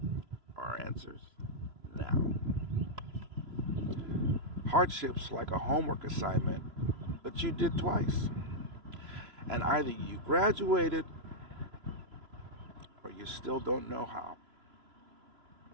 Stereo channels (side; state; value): left; late; 3.0 ms